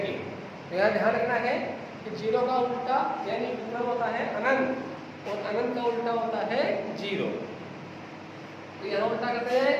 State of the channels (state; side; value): identical; both; correlation 1.00